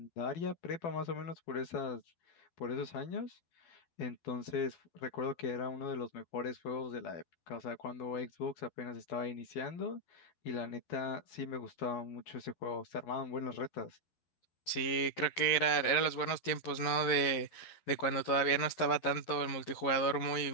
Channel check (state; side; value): late; right; 11 ms